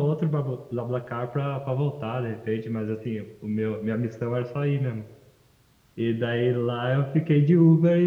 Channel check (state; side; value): identical; both; correlation 1.00